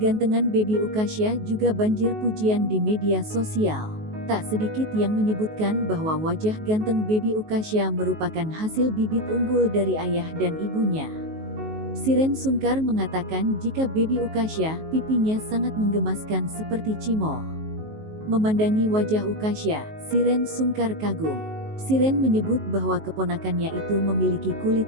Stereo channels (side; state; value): left; late; 19 ms